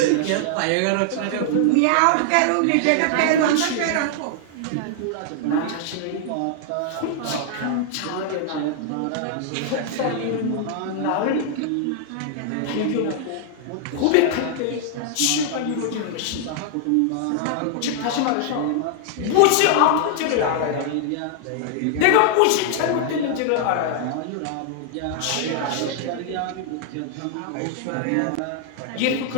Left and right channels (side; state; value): both; different; correlation 0.00